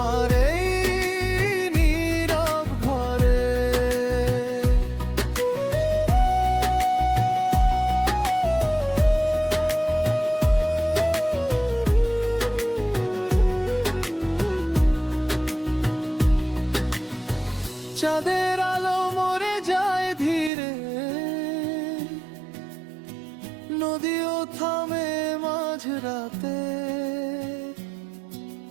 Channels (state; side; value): drops out; left; at 20.5 s